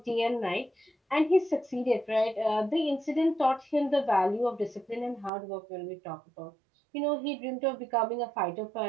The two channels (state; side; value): drops out; left; at 5.3 s